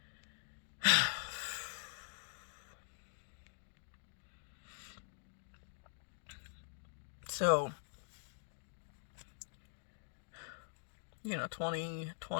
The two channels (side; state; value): right; silent; digital silence